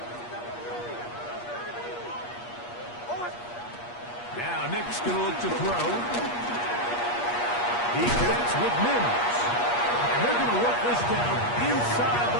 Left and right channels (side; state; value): right; late; 8.4 ms